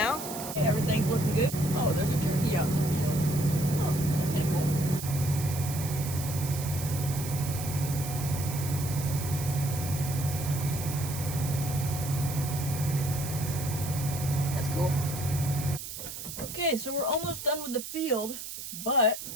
Everything's looking good. Oh, there's a turkey out in the field. Oh, that's kind of cool. That's cool. Okay, so we're almost done with the field, but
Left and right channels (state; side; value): noise; right; hiss, 9 dB below the sound